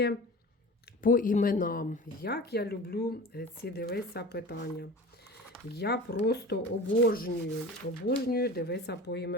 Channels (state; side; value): normal; both; correlation 0.37